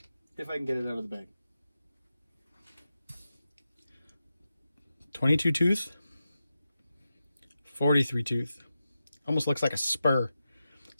If I can get it out of the bag. 22 tooth, 43 tooth. Almost looks like a spur.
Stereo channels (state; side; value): inverted; both; correlation -0.90